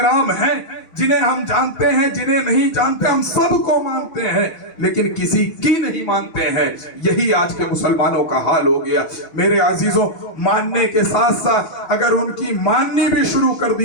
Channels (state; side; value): late; right; 6.3 ms